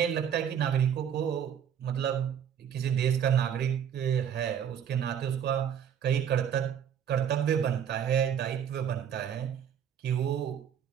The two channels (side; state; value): left; quieter; 8.7 dB